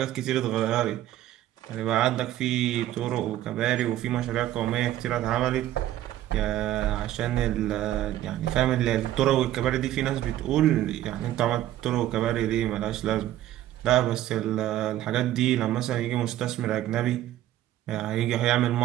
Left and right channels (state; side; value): quieter; left; 13.3 dB